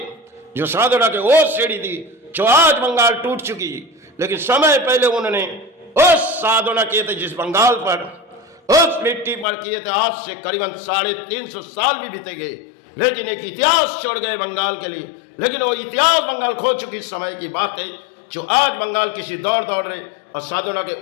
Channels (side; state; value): right; drops out; at 9.5 s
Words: जो साधना के वो सीढ़ी थी जो आज बंगाल टूट चुकी, लेकिन समय पहले उन्होंने उस साधना किए थे जिस बंगाल पर, उस मिट्टी पर किए थे। आज से करीबन 350 साल भी बीते गए, लेकिन एक इतिहास छोड़ गए बंगाल के लिए। लेकिन वो इतिहास बंगाल खो चुकी समय की बात है, जो आज बंगाल किसी दौड़ रहे, और साधना के